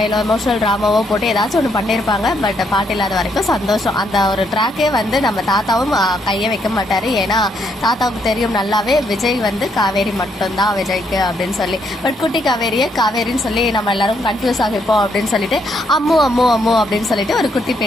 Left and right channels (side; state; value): both; normal; correlation 0.74